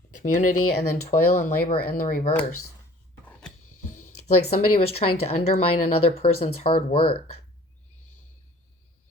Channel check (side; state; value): both; normal; correlation 0.50